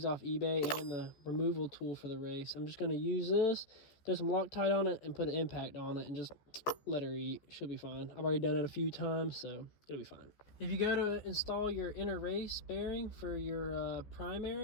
off eBay and the removal tool for the race. I'm just going to use this, throw some Loctite on it, and put an impact on it, and just let her eat. She'll be fine. I've already done it a few times, so it'll be fine. If you go to install your inner race bearing for your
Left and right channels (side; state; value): right; late; 14 ms